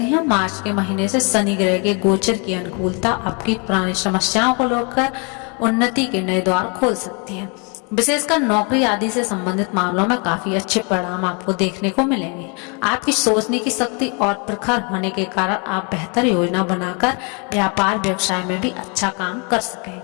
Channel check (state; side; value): quieter; right; 34.2 dB